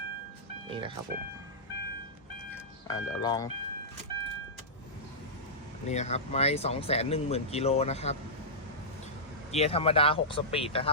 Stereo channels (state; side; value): normal; both; correlation -0.14